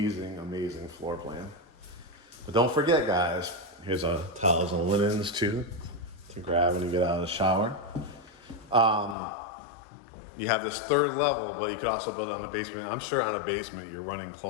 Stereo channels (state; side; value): drops out; right; at 9.2 s